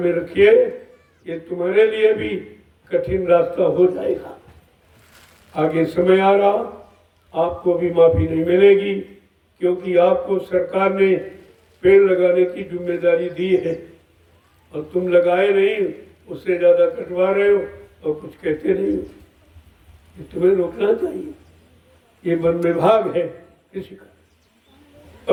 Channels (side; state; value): both; identical; correlation 1.00